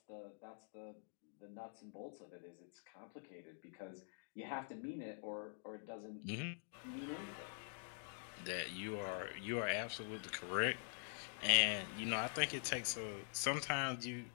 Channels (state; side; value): silent; right; digital silence